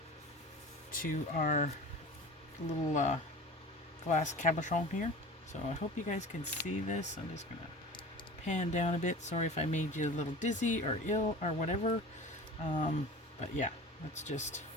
to our little glass cabochon here. So I hope you guys can see this. I'm just going to pan down a bit. Sorry if I made you a little dizzy or ill or whatever. But yeah, let's just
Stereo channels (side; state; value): both; normal; correlation 0.37